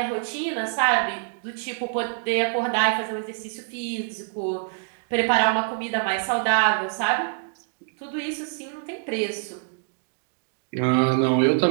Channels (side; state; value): left; silent; 62 dB below the other